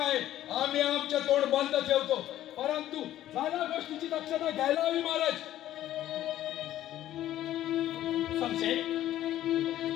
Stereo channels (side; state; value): right; quieter; 13.1 dB